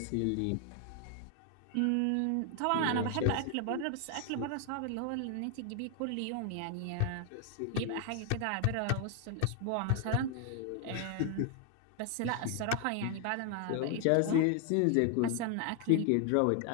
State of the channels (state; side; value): different; both; correlation 0.00